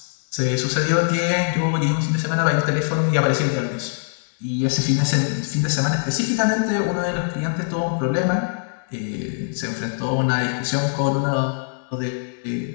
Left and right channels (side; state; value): right; silent; 64 dB below the other